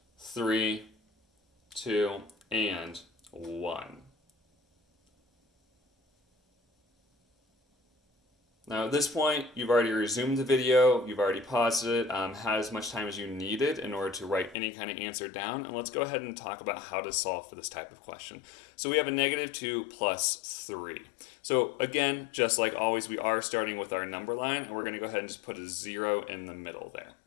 3, 2, and 1. Now at this point, you've already resumed the video, you've already paused it, had as much time as you needed in order to write any kind of answer down, and let's go ahead and talk about how to solve for this type of question. So we have a -2 plus 3. So again, just like always, we are starting with our number line, and we're going to go ahead and just put a 0 in the middle there.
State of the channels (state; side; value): drops out; right; at 14.6 s